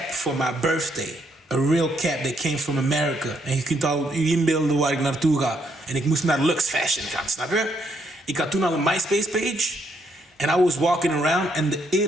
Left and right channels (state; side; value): normal; both; correlation 0.74